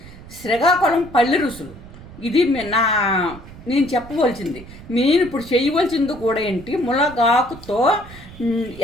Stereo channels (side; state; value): right; noise; rumble, 17 dB below the sound